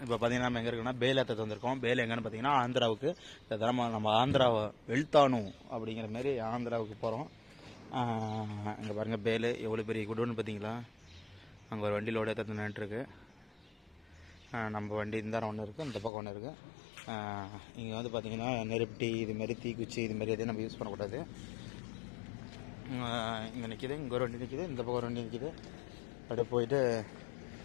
இப்போ பார்த்தீங்கன்னா நம்ம எங்கே இருக்குன்னா பேல் ஏற்ற வந்திருக்கோம். பேல் எங்கன்னு பார்த்தீங்கன்னா ஆந்திராவுக்கு. இந்த தடவை நம்ம ஆந்திராவை வெளுத்தானு அப்படிங்கிற மாதிரி ஆந்திராவுக்கு போகிறோம். இங்கே பாருங்கள் பேல் எவ்வளோ பெரிய குடோன்னு பார்த்தீங்களா. அங்கே ஒரு வண்டி லோடு ஏற்ற நின்றுருக்கு. நம்ம வண்டி இந்த ஒன்று இருக்குது, இந்த பக்கம் ஒன்று இருக்குது. இங்கே வந்து பார்த்திங்கன்னா நெருப்பட்டி இதுமாரி தீக்குச்சி இதுமாரி எதையும் நம்ம யூஸ் பண்ணக்கூடாது. இங்கே நிற்கிது, இங்கே ஒரு வண்டி நிற்கிது, இந்த பக்கம் ஒரு வண்டி நிற்கிது. அப்படியே போயிட்டு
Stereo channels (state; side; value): drops out; right; at 16.1 s